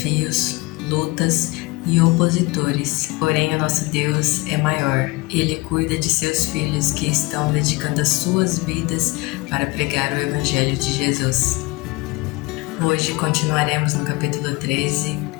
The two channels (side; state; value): right; quieter; 24.0 dB